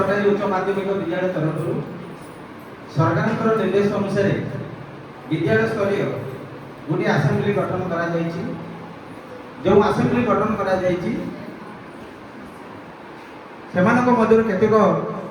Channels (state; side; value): identical; both; correlation 1.00